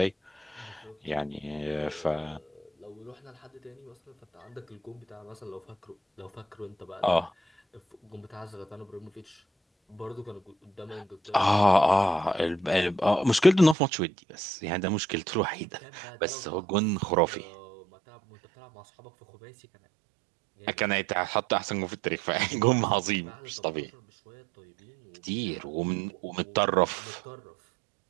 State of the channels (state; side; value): drops out; left; at 13.8 s